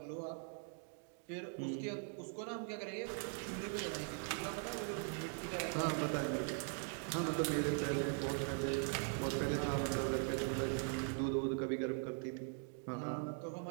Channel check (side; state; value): left; silent; 50 dB below the other